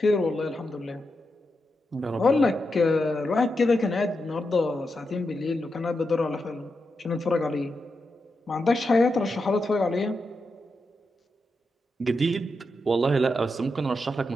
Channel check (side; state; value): both; normal; correlation 0.87